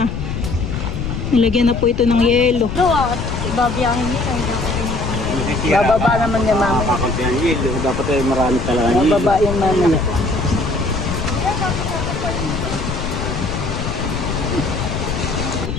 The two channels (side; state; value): left; noise; rumble, 4 dB below the sound